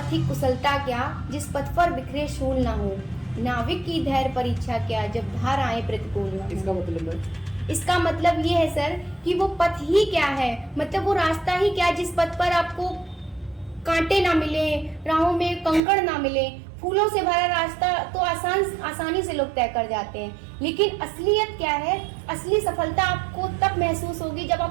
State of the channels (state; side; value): drops out; left; at 15.8 s